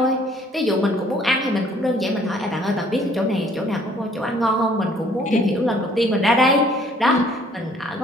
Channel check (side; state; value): both; normal; correlation 0.60